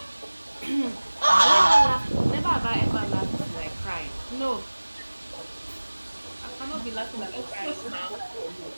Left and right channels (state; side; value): inverted; both; correlation -1.00